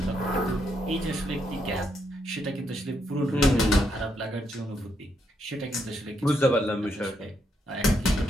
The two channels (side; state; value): both; normal; correlation 0.78